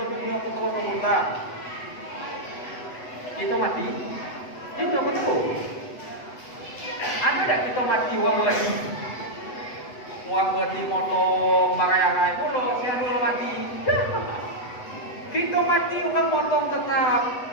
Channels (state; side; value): late; right; 8.0 ms